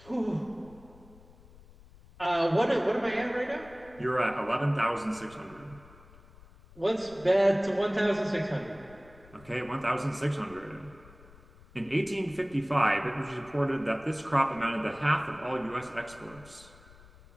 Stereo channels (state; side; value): noise; left; rumble, 23 dB below the sound